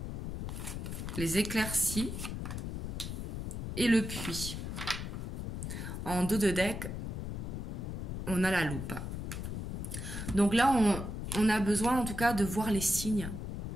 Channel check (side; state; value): left; noise; rumble, 4 dB below the sound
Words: les éclaircies et le puits. En dos de deck, on a la loupe. Donc là, on a besoin en tout cas de voir les signes